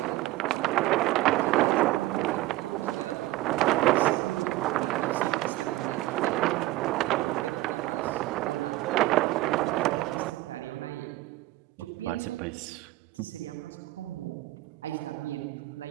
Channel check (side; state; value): left; quieter; 17.4 dB